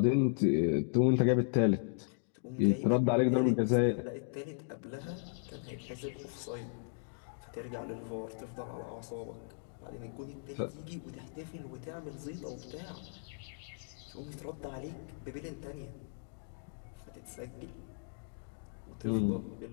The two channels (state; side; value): silent; right; digital silence